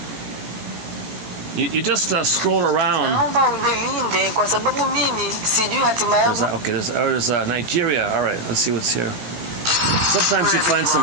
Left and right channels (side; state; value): left; late; 17 ms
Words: You just scroll around. There's Nigeria. All right, let's see what's here. Sometimes you find